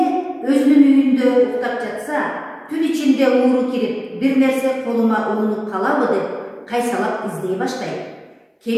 өзүнүн үйүндө уктап жатса, түн ичинде ууру кирип, бир нерсе колума уунуп калабы деп кайсалап издей баштайт.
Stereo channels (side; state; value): both; identical; correlation 1.00